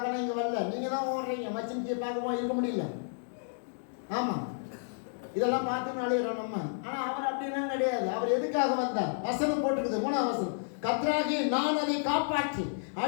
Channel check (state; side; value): silent; right; digital silence